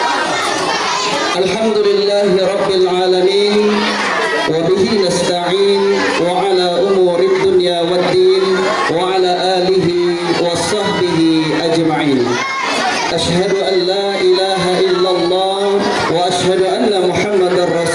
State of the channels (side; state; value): both; identical; correlation 1.00